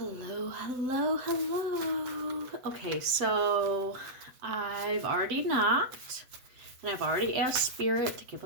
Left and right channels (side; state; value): left; late; 7.9 ms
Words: hello, hello. Okay, so I've already knocked and I've already asked Spirit to give